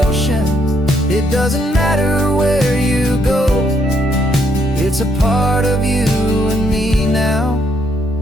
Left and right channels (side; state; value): both; normal; correlation 0.73